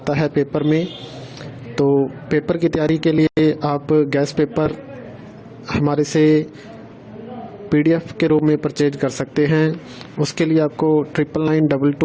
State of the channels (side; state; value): both; identical; correlation 1.00